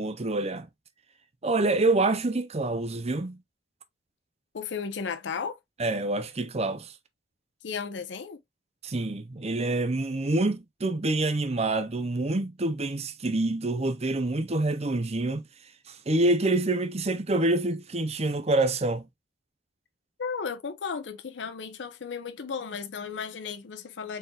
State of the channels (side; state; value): both; normal; correlation 0.41